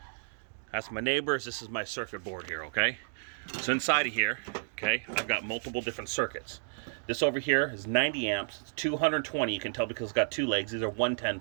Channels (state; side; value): silent; left; digital silence